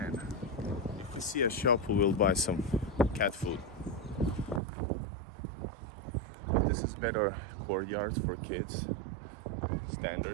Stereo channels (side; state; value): left; drops out; at 4.6 s